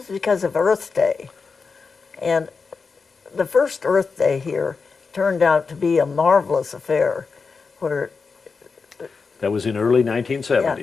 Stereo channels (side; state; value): right; quieter; 4.8 dB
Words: because of Earth Day. And the first Earth Day here turned out to be a marvelous affair where That was in early